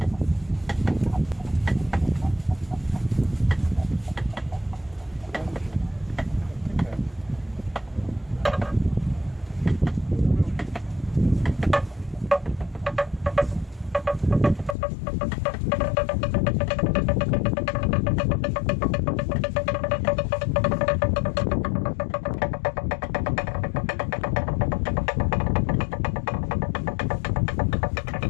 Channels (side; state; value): right; drops out; at 14.8 s